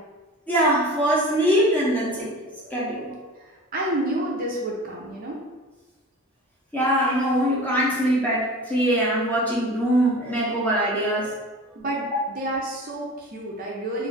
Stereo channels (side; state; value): both; normal; correlation 0.37